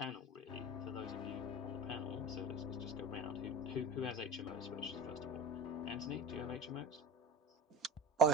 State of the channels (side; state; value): both; normal; correlation 0.33